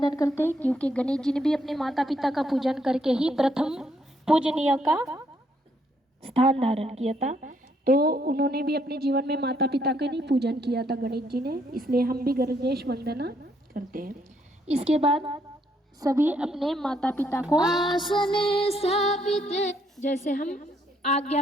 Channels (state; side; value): normal; both; correlation 0.72